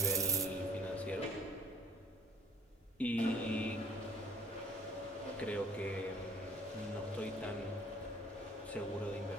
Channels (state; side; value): normal; both; correlation 0.57